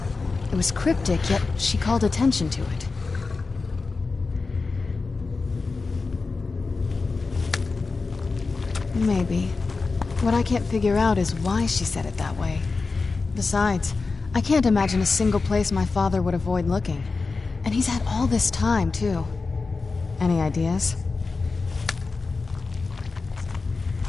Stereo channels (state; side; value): quieter; right; 4.1 dB